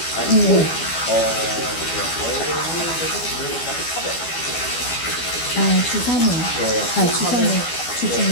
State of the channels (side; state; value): right; late; 12 ms